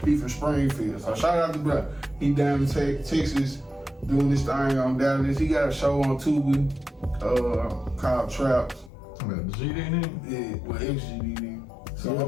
he from Springfield. So shout out to bro. He down in Texas doing this thing on Dallas. He got a show on Tubi called Traps. The GD in it? Yeah, with XGD. So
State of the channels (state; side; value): drops out; right; at 8.9 s